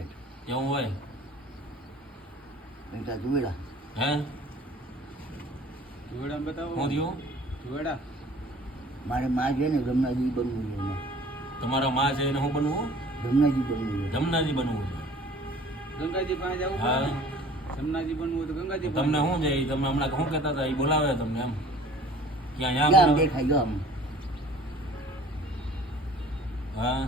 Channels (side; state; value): both; normal; correlation 0.49